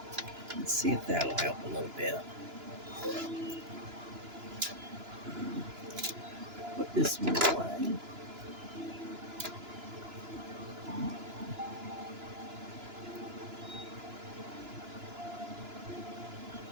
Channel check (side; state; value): left; late; 2.9 ms